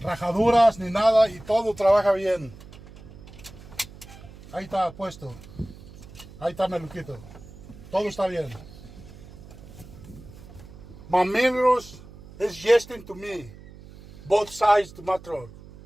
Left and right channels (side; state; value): right; noise; hum, 18 dB below the sound